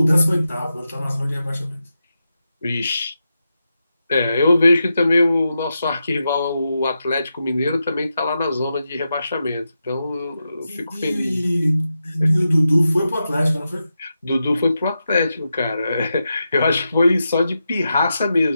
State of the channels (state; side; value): inverted; both; correlation -0.88